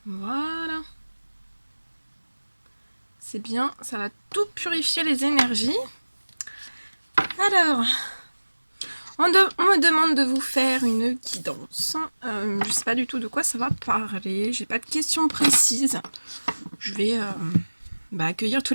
Voilà. C'est bien, ça va tout purifier les énergies. Alors, on me demande de vous faire une guidance. Je ne sais pas du tout de quoi ça va parler. J'ai pas de questions précises. Je vais accueillir tous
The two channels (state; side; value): inverted; both; correlation -1.00